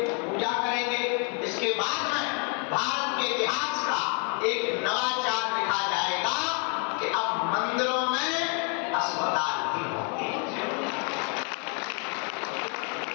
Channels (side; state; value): right; quieter; 38.2 dB